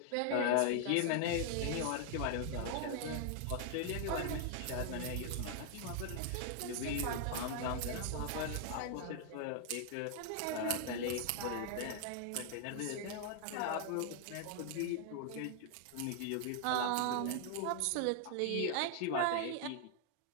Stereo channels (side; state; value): both; different; correlation 0.00